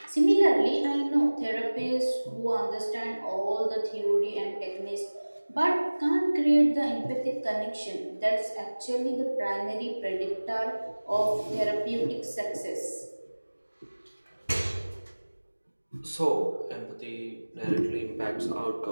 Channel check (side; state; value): both; inverted; correlation -1.00